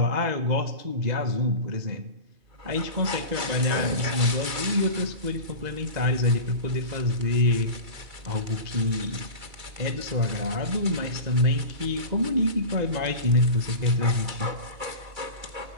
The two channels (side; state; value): left; late; 2.3 ms